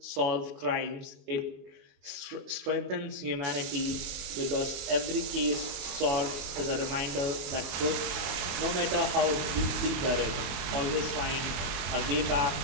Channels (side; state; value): left; late; 23 ms